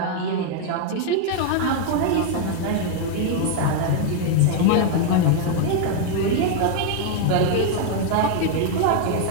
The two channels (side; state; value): both; different; correlation 0.00